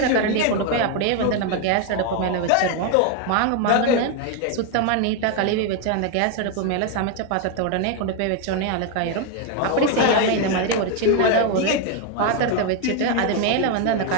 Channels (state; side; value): different; both; correlation 0.01